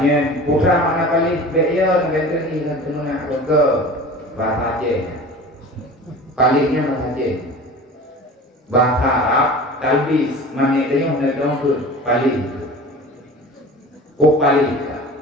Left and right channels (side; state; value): both; normal; correlation 0.38